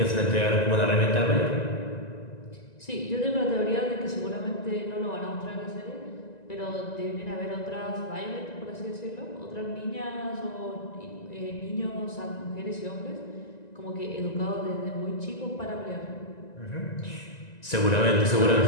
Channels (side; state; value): right; late; 1.9 ms